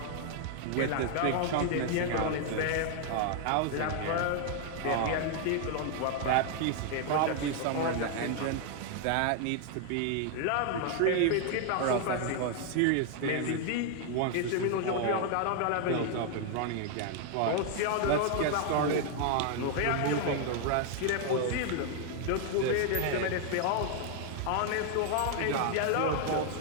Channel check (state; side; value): different; both; correlation 0.00